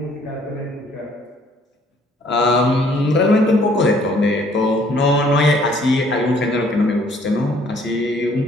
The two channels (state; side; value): normal; both; correlation 0.61